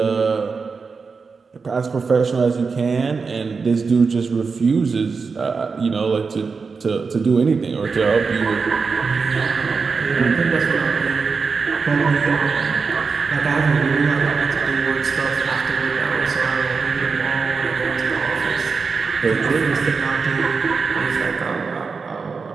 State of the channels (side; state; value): left; quieter; 4.9 dB